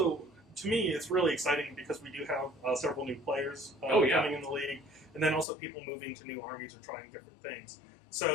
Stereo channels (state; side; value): drops out; right; at 5.5 s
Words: to me, it's really exciting because we do have several new players coming in the league. And then also people moving to new armies or trying different things.